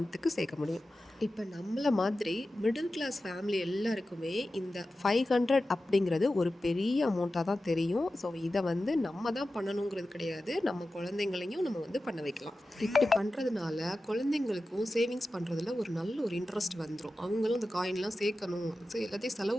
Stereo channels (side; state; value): both; normal; correlation 0.94